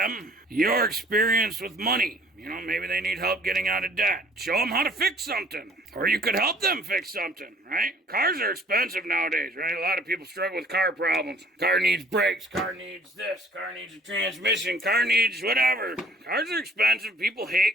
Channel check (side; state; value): both; normal; correlation 0.55